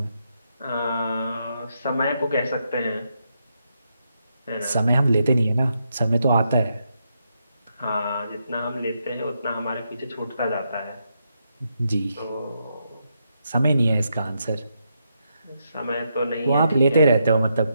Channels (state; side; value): inverted; both; correlation -0.81